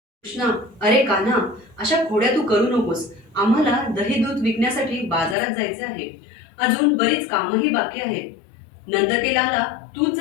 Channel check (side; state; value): right; drops out; at 5.4 s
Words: कृष्णा, अरे कान्हा, अशा खोड्या तू करू नकोस. आम्हाला दही दूध विकण्यासाठी बाजारात जायचे आहे. अजून बरीच कामही बाकी आहेत. नंदकेलाला तूच